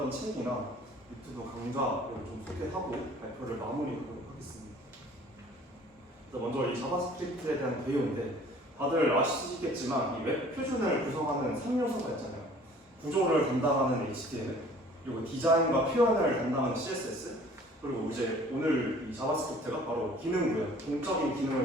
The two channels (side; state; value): both; normal; correlation 0.51